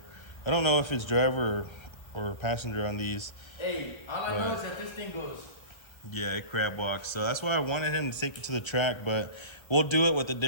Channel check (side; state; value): right; late; 1.3 ms